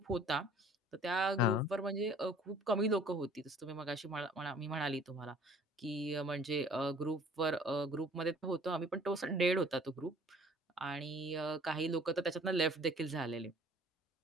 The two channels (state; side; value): normal; both; correlation 0.53